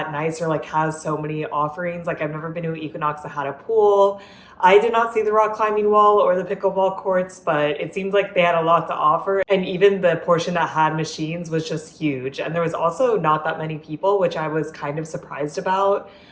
nice or like has so many offerings. Like, I've never been to an Equinox that had a pool. I did not see the rock climbing wall or the pickleball courts, but it seemed like they had a lot to offer. And even the portion that had machines was just huge. And there was also not that many people, which I was kind of surprised about.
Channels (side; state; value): both; identical; correlation 1.00